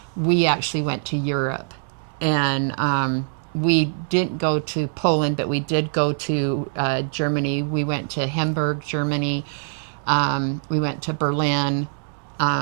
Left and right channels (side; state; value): left; silent; 63 dB below the other